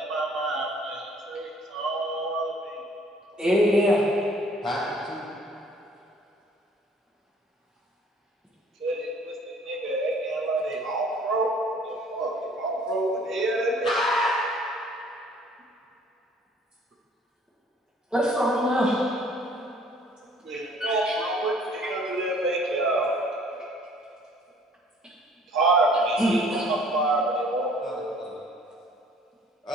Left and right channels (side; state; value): both; normal; correlation 0.56